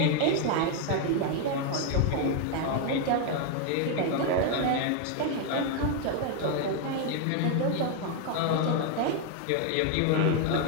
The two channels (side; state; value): both; different; correlation 0.01